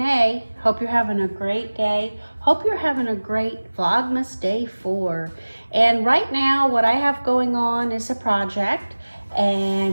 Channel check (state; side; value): inverted; both; correlation -1.00